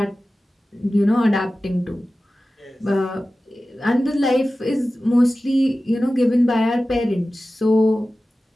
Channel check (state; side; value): normal; both; correlation 0.95